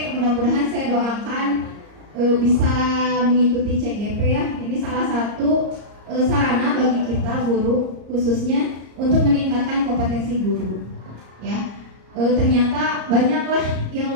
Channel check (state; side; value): late; left; 34 ms